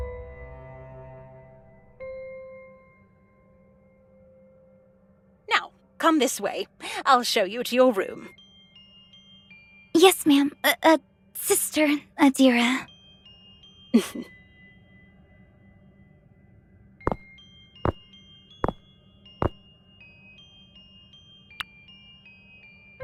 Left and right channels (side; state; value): both; identical; correlation 1.00